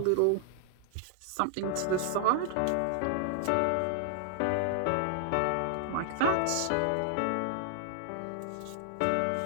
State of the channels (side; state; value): both; different; correlation 0.00